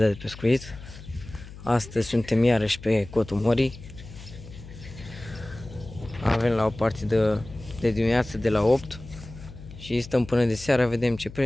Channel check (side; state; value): left; noise; hum, 15 dB below the sound